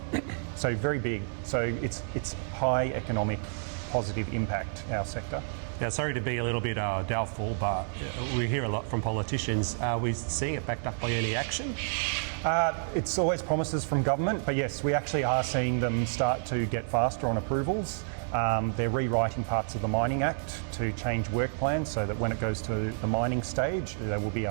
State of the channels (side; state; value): left; silent; 58 dB below the other